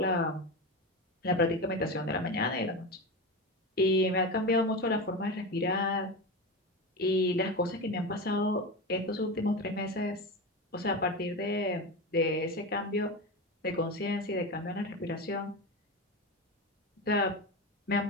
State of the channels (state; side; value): normal; both; correlation 0.21